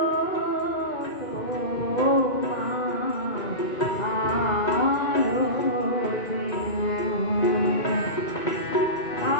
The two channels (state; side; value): late; right; 2.1 ms